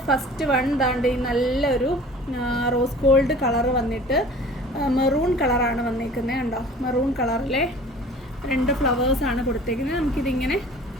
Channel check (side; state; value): both; normal; correlation 0.46